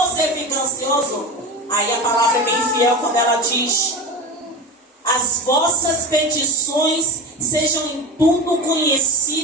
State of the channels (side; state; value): both; normal; correlation 0.26